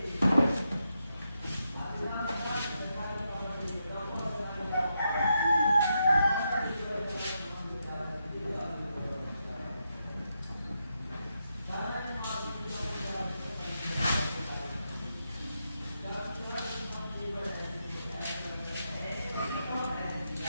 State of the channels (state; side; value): inverted; both; correlation -0.84